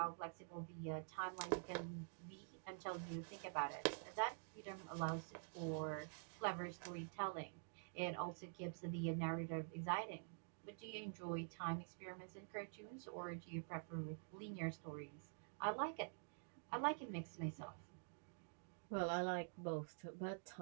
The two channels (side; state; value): left; silent; digital silence